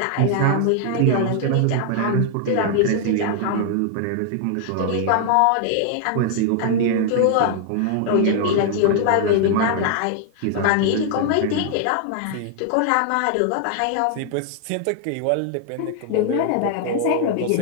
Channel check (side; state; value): both; different; correlation 0.00